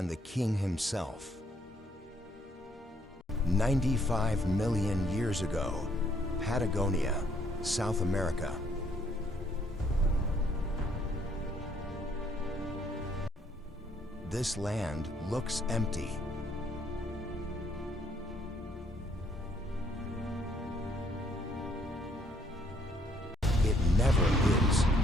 the king himself. 95 million years ago, Patagonia, South America. This land looks empty. It never is.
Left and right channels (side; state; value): both; normal; correlation 0.67